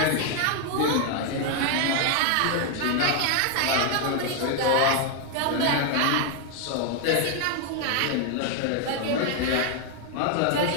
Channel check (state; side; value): different; both; correlation 0.01